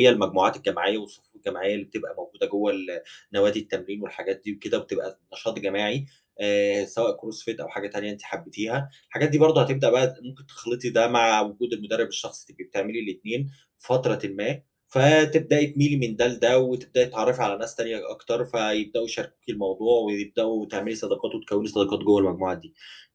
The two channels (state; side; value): identical; both; correlation 1.00